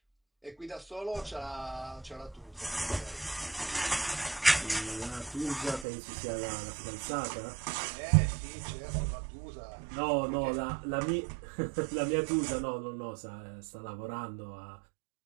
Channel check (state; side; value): drops out; left; at 5.9 s